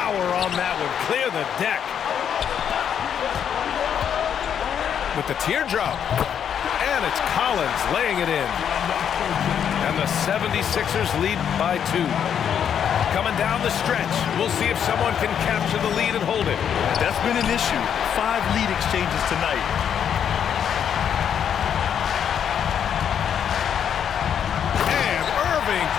on that one. Clear the deck. With the teardrop. And it's Collins laying it in. And the 76ers lead by 2. Coming down the stretch. We'll see if someone can capture the lead and hold it. That's been an issue. 5 lead exchanges tonight. And Irving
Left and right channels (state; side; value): quieter; right; 8.5 dB